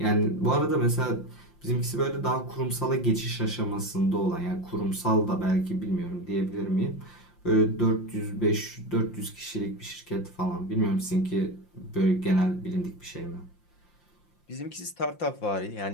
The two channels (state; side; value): late; right; 5.7 ms